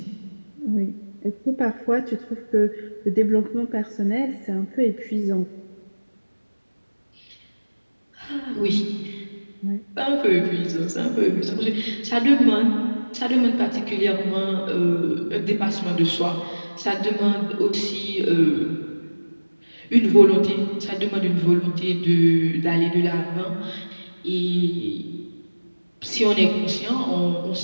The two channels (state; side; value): inverted; both; correlation -1.00